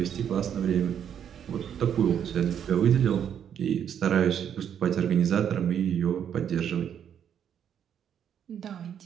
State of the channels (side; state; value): left; quieter; 8.8 dB